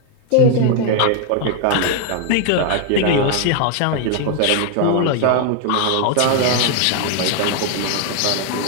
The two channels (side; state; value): both; different; correlation 0.00